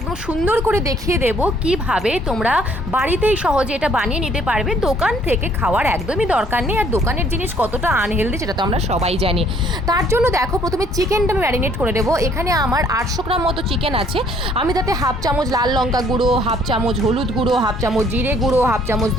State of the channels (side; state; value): both; normal; correlation 0.62